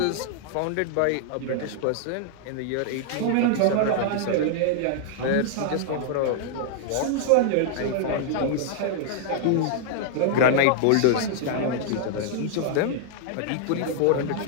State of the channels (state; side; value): different; both; correlation -0.01